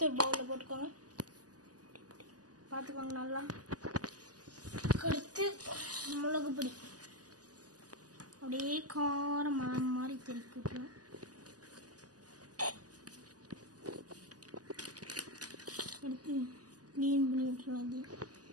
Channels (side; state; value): left; late; 0.67 ms